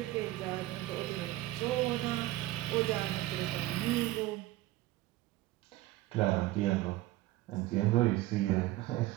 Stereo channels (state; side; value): quieter; left; 17.0 dB